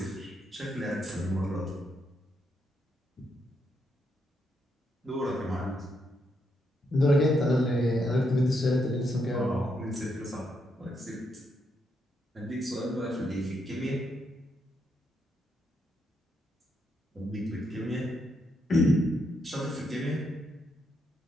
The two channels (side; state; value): both; normal; correlation 0.79